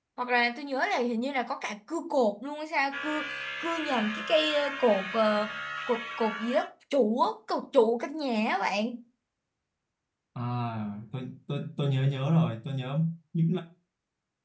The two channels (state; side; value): identical; both; correlation 1.00